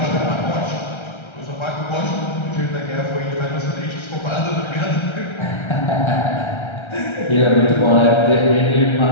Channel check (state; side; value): late; right; 1.3 ms